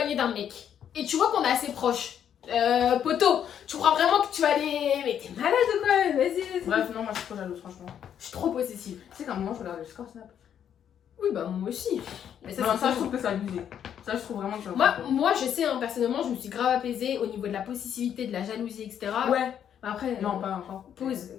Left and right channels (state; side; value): quieter; right; 9.1 dB